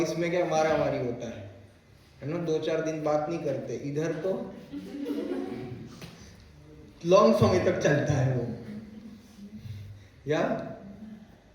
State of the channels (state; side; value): identical; both; correlation 1.00